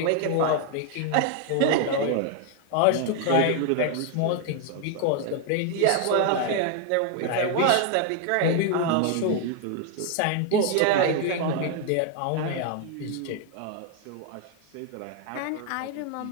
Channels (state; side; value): different; both; correlation 0.00